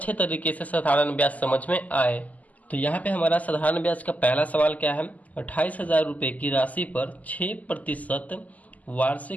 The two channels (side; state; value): right; late; 0.077 ms